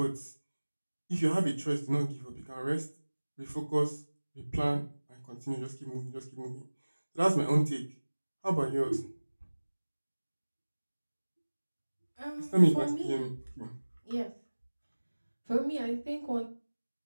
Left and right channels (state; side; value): inverted; both; correlation -1.00